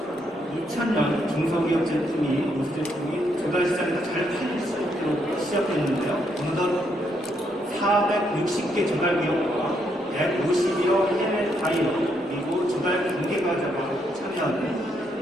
2000년 중소기업 제품이 우수 제품이 조달 시장에서 잘 팔릴 수 있도록 시작했는데요. 어느덧 460개 조달 기업과 150여 해외 바이어 그리고 조달 관계가자가 참여하는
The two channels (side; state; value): both; normal; correlation 0.75